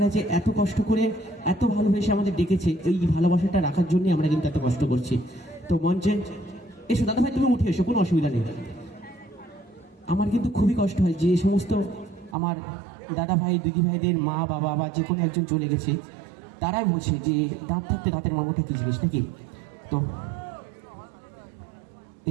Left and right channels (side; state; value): left; drops out; at 12.4 s